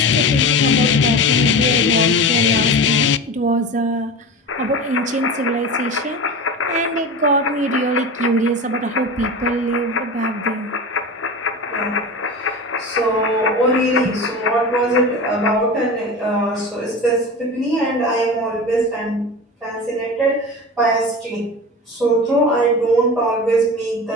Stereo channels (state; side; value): normal; both; correlation 0.29